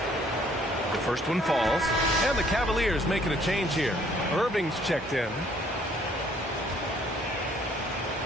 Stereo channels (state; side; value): normal; both; correlation 0.62